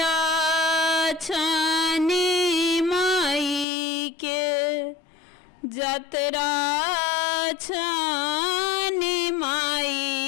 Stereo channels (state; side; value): drops out; right; at 3.7 s